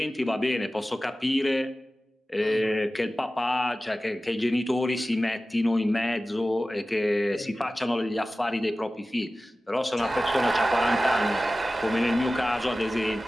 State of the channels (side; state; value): both; normal; correlation 0.96